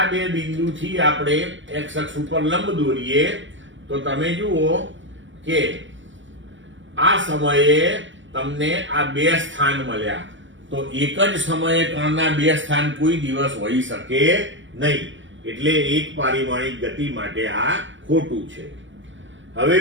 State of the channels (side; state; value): left; late; 0.55 ms